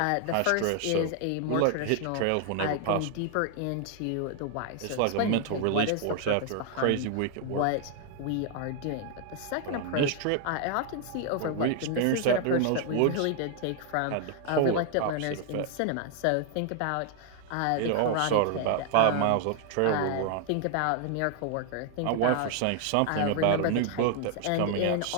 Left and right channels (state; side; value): different; both; correlation 0.00